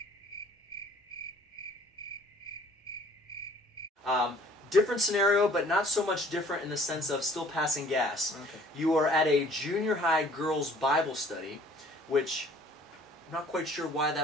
Different scenario, but not so much different in the sense of still passing gas. Okay. You are at a junior high girls' Bible study, which I'm not quite sure why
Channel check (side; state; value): both; normal; correlation 0.54